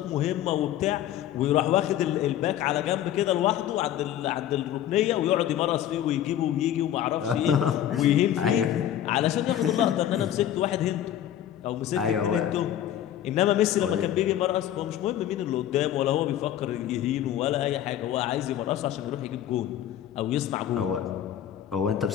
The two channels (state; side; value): quieter; right; 11.3 dB